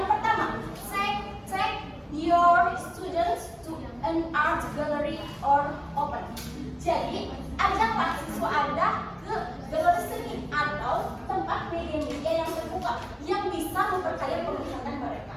pertama, take your students to an art gallery or open. Jadi, ajaklah siswa Anda ke galeri seni atau tempat media-media yang terbuka yang bisa memperkaya penglihatan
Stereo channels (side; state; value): both; identical; correlation 1.00